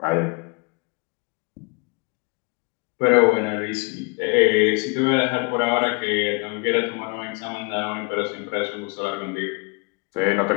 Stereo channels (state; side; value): quieter; right; 32.4 dB